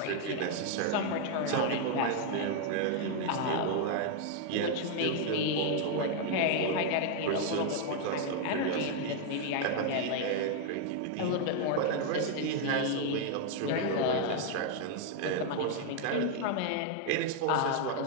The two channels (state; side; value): different; both; correlation 0.00